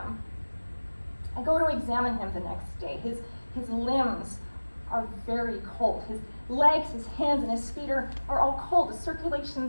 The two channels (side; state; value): both; inverted; correlation -1.00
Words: I go to examine him the next day. His limbs are very cold. His legs, his hands, and his feet are all cold. The